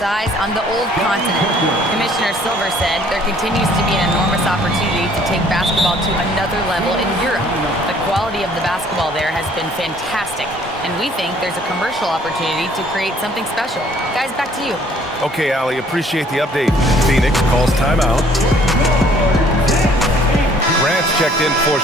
eyes on the old continent. Commissioner Silver said there continues to be an enormous opportunity to take basketball to another level in Europe. The quality of the basketball there has been fantastic, and we think there's a commercial opportunity to create something special. Guys, back to you. Okay, Allie, appreciate the update. Phoenix calls timeout. Grant's checked in for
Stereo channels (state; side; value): normal; both; correlation 0.59